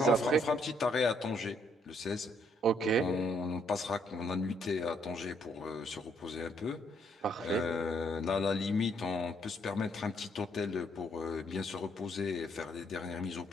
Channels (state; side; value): normal; both; correlation 0.70